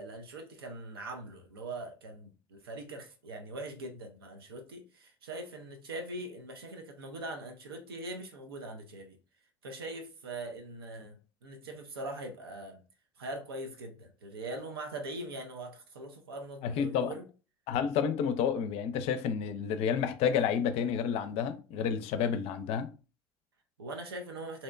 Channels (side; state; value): right; quieter; 5.2 dB